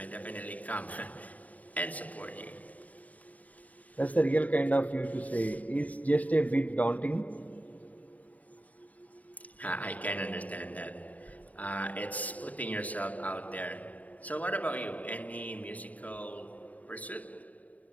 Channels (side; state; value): right; late; 0.072 ms